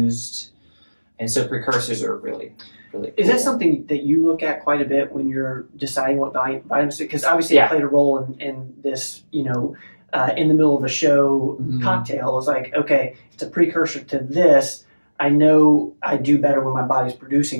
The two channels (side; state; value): both; inverted; correlation -1.00